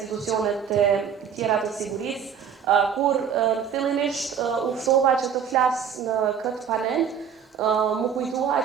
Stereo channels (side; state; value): left; quieter; 7.7 dB